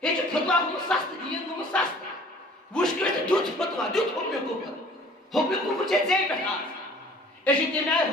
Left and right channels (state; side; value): normal; both; correlation 0.50